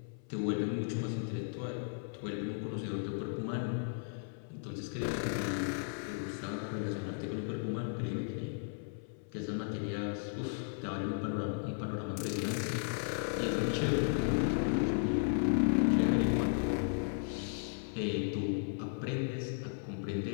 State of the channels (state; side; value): silent; right; 54 dB below the other